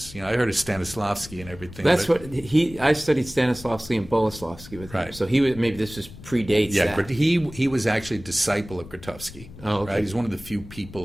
I heard of Stanislavski and everything. That's what I studied Stanislavski and Boleslavski with him. Right. So maybe this was predates Yeah, that. he was actually a disciple of Grotowski. Oh, okay. Right? He's one of the few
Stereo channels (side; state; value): left; noise; rumble, 17 dB below the sound